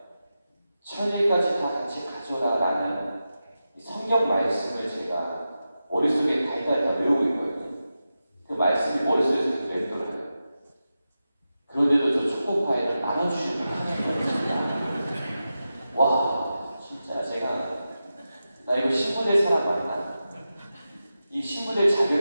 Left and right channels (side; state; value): both; inverted; correlation -0.92